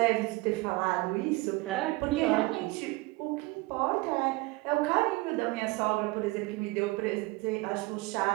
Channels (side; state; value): left; quieter; 22.0 dB